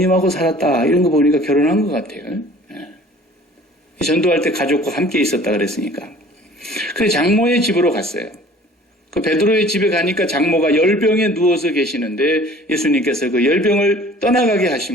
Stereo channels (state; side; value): normal; both; correlation 0.49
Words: 살았다 이런 거 보니까 결혼한 것 같아요. 전도할 때 가족과 함께 있었다 그랬으니까. 그래서 장모의 집으로 갔어요. 그 베드로의 집에 가니까 장모가 열병에 누워서 계시는데 예수님께서 그 열병을 떠나가게